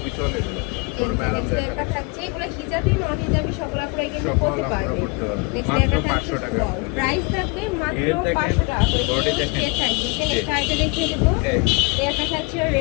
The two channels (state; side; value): quieter; right; 29.4 dB